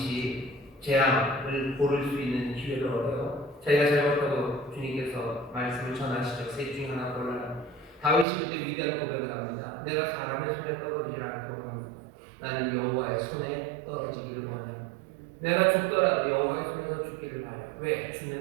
재앙을 고를 수 있는 기회를 얻어요. 자기가 잘못하고 주님께서 말씀을 전하시죠. 셋 중 하나 골라라. 다윗이 그때 위대한 고백을 합니다. 내가 사람의 손에 떨어지지 않기를 원합니다. 나는 여호와의 손에 떨어지기를 원해요. 내가 죽더라도 여호와의 손에서 죽기를 바래요. 왜?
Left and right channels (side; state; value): left; drops out; at 8.2 s